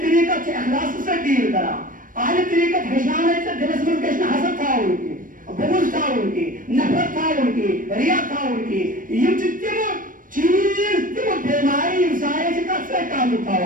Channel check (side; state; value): left; late; 0.40 ms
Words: طریقت سے اخلاص سے ڈیل کرا آدھی طریقت ہشانے سے دلس من کشن حسد تھا ان کی بغض تھا ان کی نفرت تھا ان کی ریا تھا ان کی یہ تم چیز تم بیماری انسانی سے کب سے تعلق